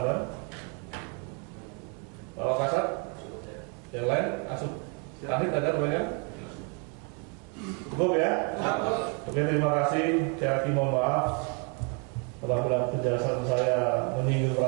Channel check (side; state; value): left; quieter; 36.7 dB